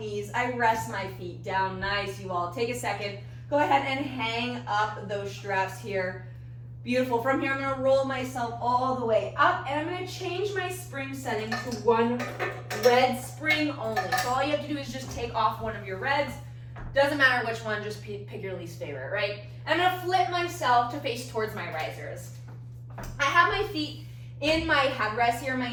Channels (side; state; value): both; identical; correlation 1.00